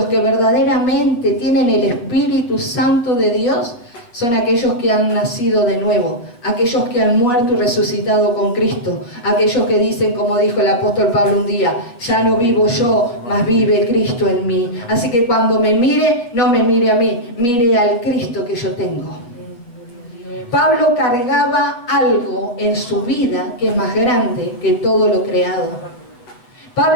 que verdaderamente tienen el Espíritu Santo de Dios, son aquellos que han nacido de nuevo, aquellos que han muerto y resucitado con Cristo, aquellos que dicen, como dijo el apóstol Pablo un día: ya no vivo yo, mas vive Cristo en mí. Así que cuando me mire, no me mire a mí, mire al Cristo que yo tengo. Pablo cargaba algo en su vida que es más grande que todo lo creado.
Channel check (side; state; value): right; late; 8.2 ms